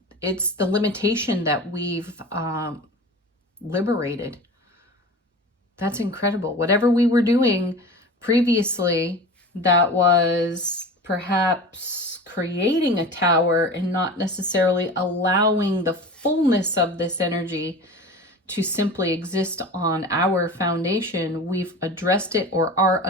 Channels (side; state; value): both; normal; correlation 0.35